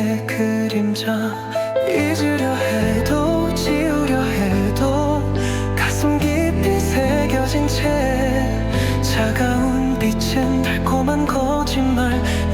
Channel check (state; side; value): identical; both; correlation 1.00